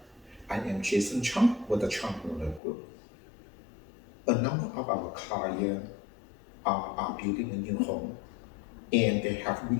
I am Jason Chong with the Chong Miller Group. A number of our clients are building a new home, and they have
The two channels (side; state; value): right; drops out; at 2.6 s